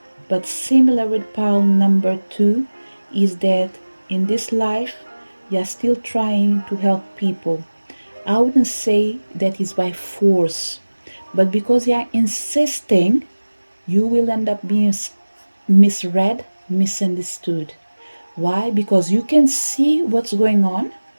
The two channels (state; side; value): inverted; both; correlation -1.00